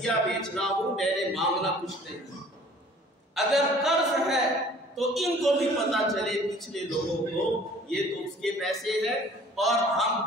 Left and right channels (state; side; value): normal; both; correlation 0.51